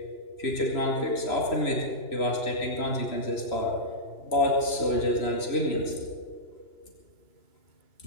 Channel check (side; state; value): right; late; 3.0 ms